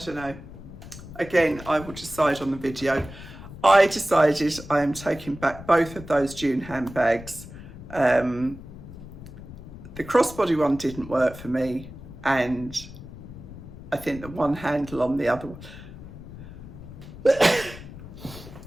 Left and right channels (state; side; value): noise; left; rumble, 15 dB below the sound